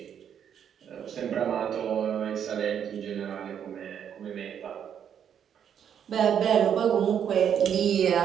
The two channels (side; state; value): left; quieter; 8.6 dB